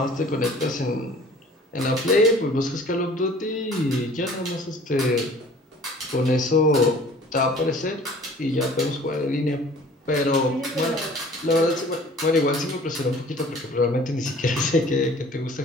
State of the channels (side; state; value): both; normal; correlation 0.49